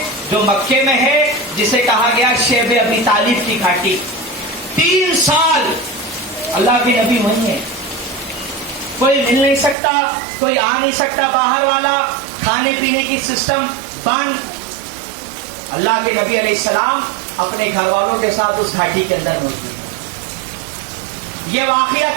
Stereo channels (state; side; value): drops out; left; at 9.8 s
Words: جو مکے میں ہے، جسے کہا گیا شیب ابی طالب کی گھاٹی۔ 3 سال اللہ کے نبی وہیں ہے، کوئی مل نہیں سکتا، کوئی آ نہیں سکتا باہر والا، کھانے پینے کی سسٹم بند۔ اللہ کے نبی علیہ السلام اپنے گھر والوں کے ساتھ اس گھاٹی کے اندر موجود ہیں۔ یہ واقعہ